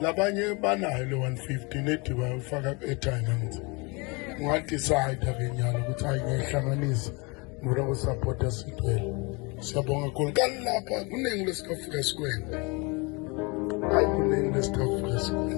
Labanye banayo le 150 nethi bayofaka airtime ngithi ungadecide akenyalo ukuthi ayihlanganisa ngoba support Sitwell. Siyabonga kakhulu kanilapha kuningi lesikafika sikwenza. Hayi kuningi lesikafika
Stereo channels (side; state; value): right; quieter; 28.9 dB